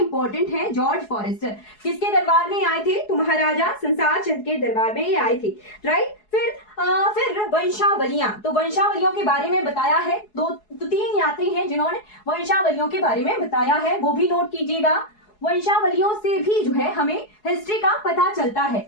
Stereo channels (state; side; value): late; right; 4.7 ms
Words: है। जॉर्ज फॉरेस्टर किसके दरबार में आए थे? तो महाराजा संसार चंद के दरबार में ये आए थे, राइट। फिर वंशावलियां, तो वंशावलियों के बारे में बताया है। दो तीन यात्री हैं जिन्होंने वंशावलियों के बारे में बताया है, वो भी नोट कीजिएगा। वंशावलियों से भी जो है हमें हिस्ट्री का पता चलता है,